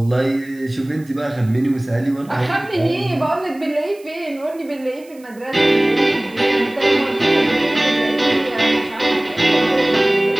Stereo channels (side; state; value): right; noise; hiss, 27 dB below the sound